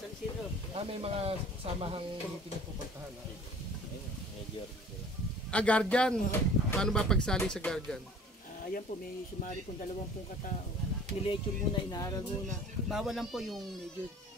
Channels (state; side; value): normal; both; correlation 0.48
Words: San Isidro. May mga samahang meeting na pupuntahan. Guardian. Paano ba pagsali sa Guardian? Ayan po, may sumari pong 20 katao. Nilecture muna, inaaral muna. Bawal lang po yung medyo